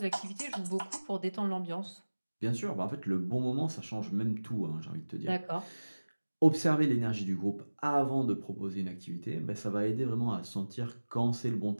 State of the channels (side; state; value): both; inverted; correlation -1.00